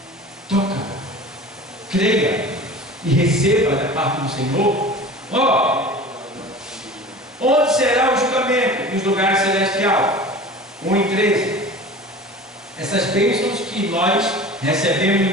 Toca, creia e receba da parte do Senhor. Onde será o julgamento? Nos lugares celestiais. 1 e 13. Essas bênçãos que nós recebemos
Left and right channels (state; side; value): normal; both; correlation 0.38